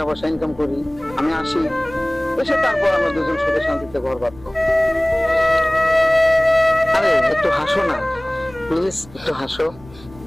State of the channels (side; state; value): left; noise; rumble, 22 dB below the sound